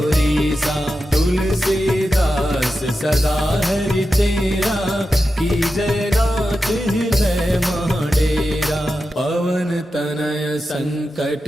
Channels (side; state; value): both; normal; correlation 0.91